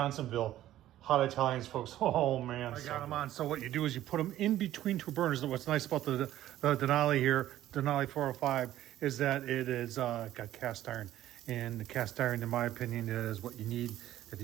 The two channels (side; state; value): left; quieter; 13.4 dB